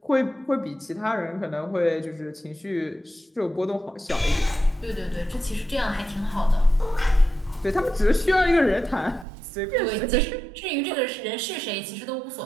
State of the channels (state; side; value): drops out; left; at 9.2 s